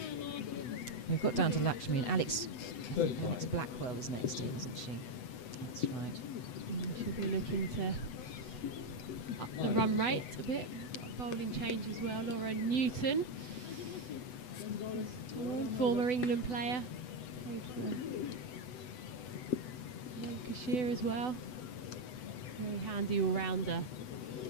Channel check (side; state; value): right; late; 8.0 ms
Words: We've got down to Lakshmi and Alex. I think Alex Blackwell is next in, isn't she? That's right. She'll be looking to up the run rate a bit. Got a bowling change as well. Laura Newton, former England player, played for Lancashire as well. Very handy all-rounder,